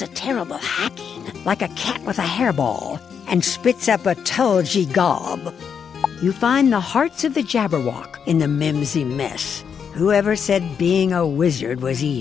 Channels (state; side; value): quieter; right; 7.1 dB